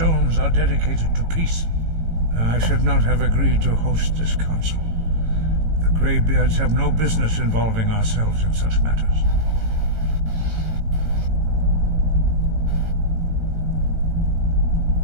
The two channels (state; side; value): late; left; 18 ms